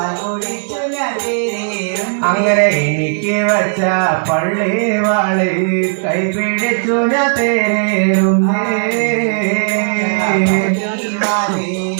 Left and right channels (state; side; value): silent; left; digital silence